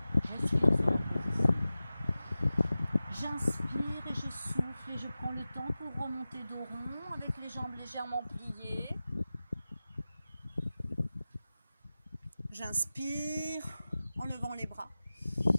Respire sur la position. J'inspire et je souffle et je prends le temps pour remonter dos rond avec les jambes légèrement pliées. J'inspire en levant les bras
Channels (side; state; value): both; inverted; correlation -0.96